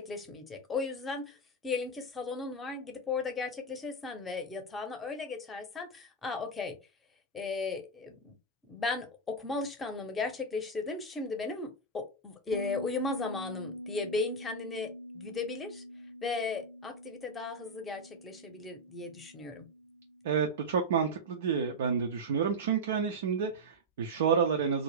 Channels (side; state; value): both; normal; correlation 0.01